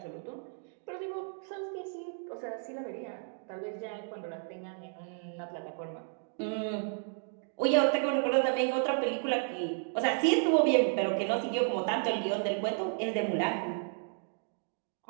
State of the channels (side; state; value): left; silent; 56 dB below the other